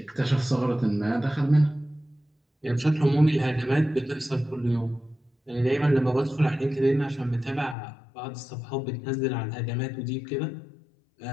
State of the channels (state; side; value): drops out; right; at 7.8 s